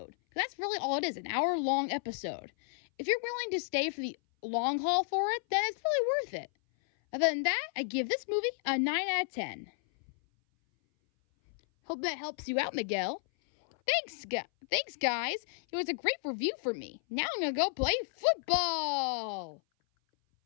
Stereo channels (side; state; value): right; silent; 56 dB below the other